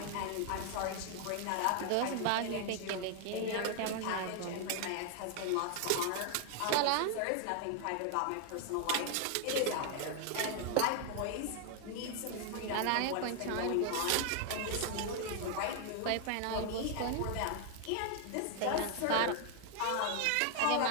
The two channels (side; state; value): both; different; correlation 0.00